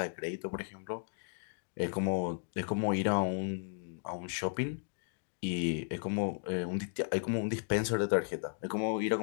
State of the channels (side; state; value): right; silent; digital silence